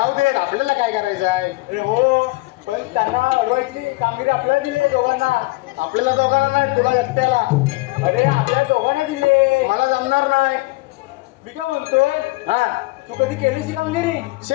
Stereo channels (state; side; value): quieter; right; 22.8 dB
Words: दे, आपल्याला काय करायचं आहे. अरे हो, पण त्यांना अडवायची कामगिरी आपल्याला दिली दोघांना. आपल्याला दोघांना नाही, तुला एकट्याला. अरे आपल्या दोघांना दिली. मला जमणार नाही. मी काय म्हणतोय हा तू कधी केलीस ही कामगिरी